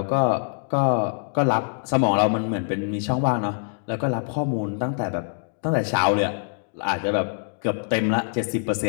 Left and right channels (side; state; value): right; silent; digital silence